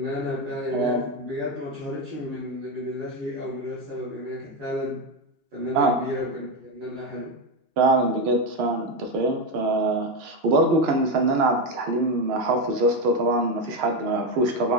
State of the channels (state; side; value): late; left; 2.8 ms